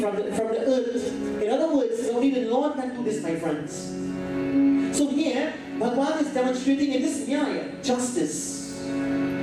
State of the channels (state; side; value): identical; both; correlation 1.00